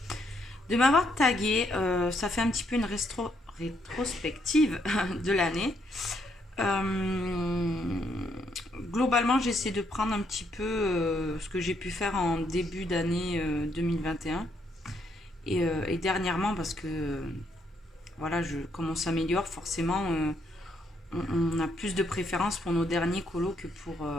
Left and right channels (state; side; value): normal; both; correlation 0.74